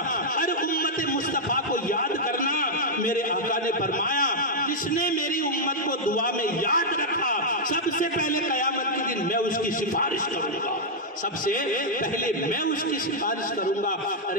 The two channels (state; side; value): normal; both; correlation -0.05